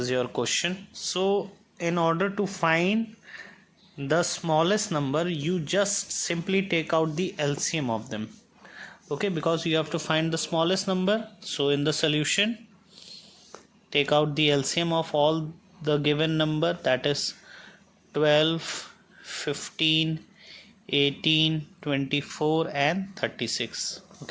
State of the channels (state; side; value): identical; both; correlation 1.00